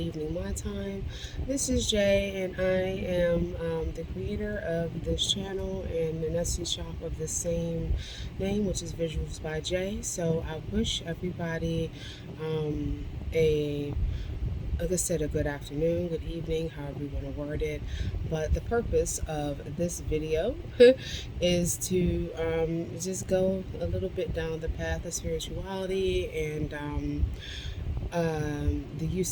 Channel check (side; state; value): both; identical; correlation 1.00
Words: my time. This is Jay, and I am the creator of this channel and an Etsy shop of the same name, which is Visuals by Jay. So I wish everybody a like I said, a good afternoon, good evening, however you want to word it. But the purpose of this video is to just go a little bit down the path of spirituality and the